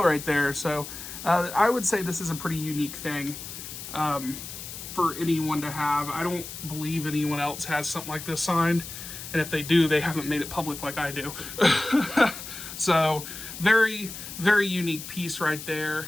right there. So I would say this is a pretty unique thing for anyone to have. I don't believe anyone else has something like this signed. And if they do, they haven't made it public like I do. So very, very unique piece right there.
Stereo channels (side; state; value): left; noise; hiss, 10 dB below the sound